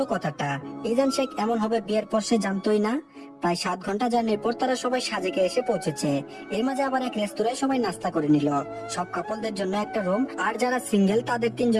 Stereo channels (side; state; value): both; identical; correlation 1.00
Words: কথাটা। ইজান শেখ এমন হবে বিয়ের পর সে জানতোই না। প্রায় ৭ ঘন্টা জার্নির পর তারা সবাই সাজেকে এসে পৌঁছেছে। এর মাঝে আবার এক রেস্তোরাঁয় সবাই নাস্তা করে নিল। সব কাপলদের জন্য একটা রুম, আর যারা সিঙ্গেল তাদের ৩